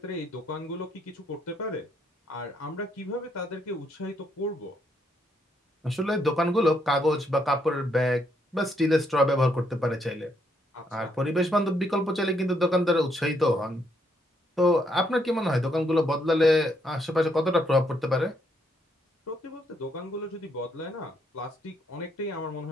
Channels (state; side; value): normal; both; correlation 0.74